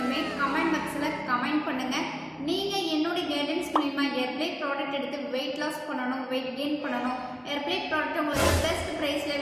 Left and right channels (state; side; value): identical; both; correlation 1.00